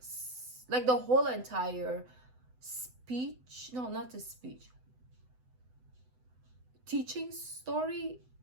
like the whole entire speech. No, not the speech. Teaching, story,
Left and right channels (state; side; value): late; left; 8.0 ms